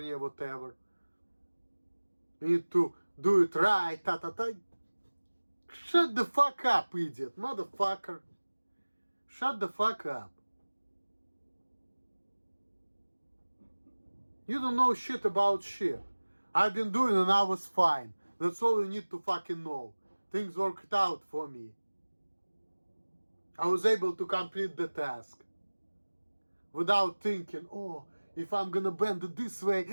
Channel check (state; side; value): inverted; both; correlation -1.00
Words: whatever. You need to do it right, Shut the fuck up, idiot, motherfucker. Shut the fuck up. You don't know shit about shit. I've been doing it and I was fine. That's all you need to fucking know. Things worked out for me. I was able to complete the task. Without thinking, oh, if I'm gonna bend it this way,